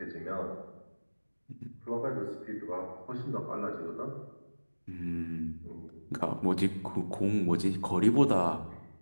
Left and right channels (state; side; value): inverted; both; correlation -1.00